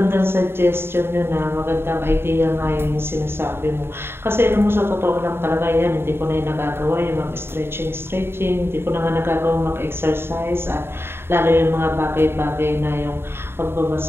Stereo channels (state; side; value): late; left; 0.11 ms